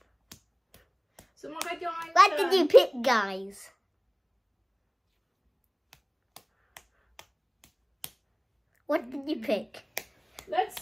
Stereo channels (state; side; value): identical; both; correlation 1.00